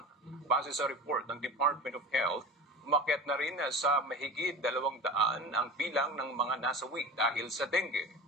Base sa report ng Department of Health, umakyat na rin sa mahigit 200 ang bilang ng mga nasawi dahil sa dengue.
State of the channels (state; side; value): normal; both; correlation 0.32